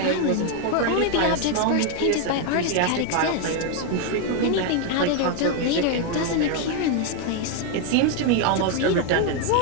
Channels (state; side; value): different; both; correlation 0.01